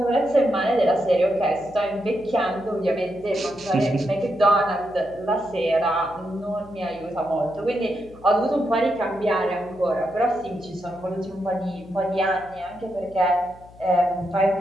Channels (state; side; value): noise; left; hum, 22 dB below the sound